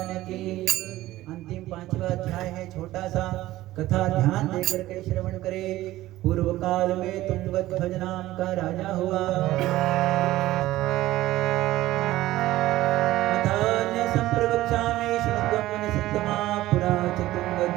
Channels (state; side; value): quieter; left; 16.1 dB